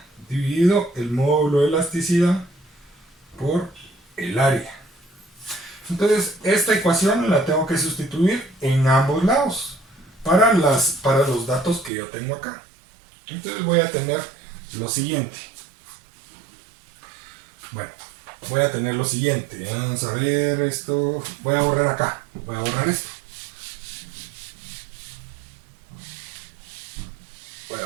dividido el módulo de elasticidad por el área. Entonces esta ecuación la tengo que sustituir en ambos lados para los datos que yo tengo acá. Entonces voy a tener lo siguiente. Bueno, voy a tener lo siguiente. Vamos a ver esto. Voy a borrar acá. Voy a borrar esto. Voy a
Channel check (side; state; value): left; drops out; at 11.9 s